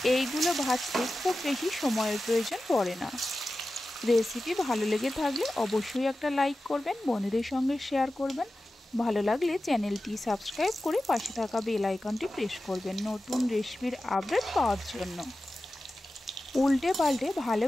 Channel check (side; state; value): both; normal; correlation 0.94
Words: এইগুলো ভাজতে খুব বেশি সময়ের প্রয়োজন পড়ে না। রেসিপি ভালো লেগে থাকলে অবশ্যই একটা লাইক করবেন, বন্ধুদের সঙ্গে শেয়ার করবেন। ভালো লাগলে চ্যানেলটি সাবস্ক্রাইব করে পাশে থাকা বেল আইকনটি প্রেস করবেন নতুন রেসিপির আপডেট পাওয়ার জন্য। উল্টে পাল্টে ভালো